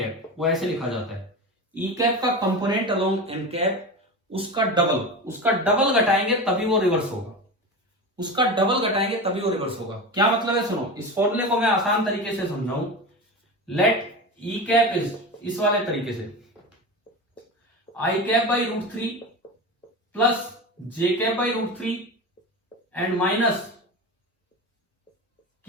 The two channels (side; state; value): both; normal; correlation 0.25